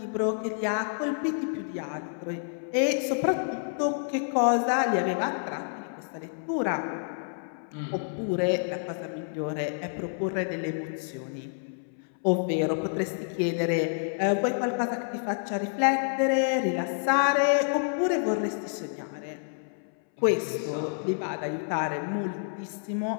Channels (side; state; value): right; silent; 59 dB below the other